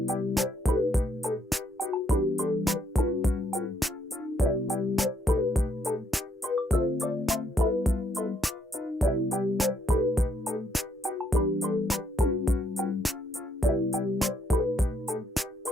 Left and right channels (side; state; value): both; normal; correlation 0.72